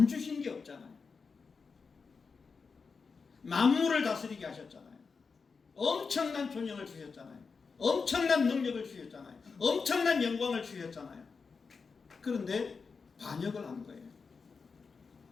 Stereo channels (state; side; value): quieter; right; 5.0 dB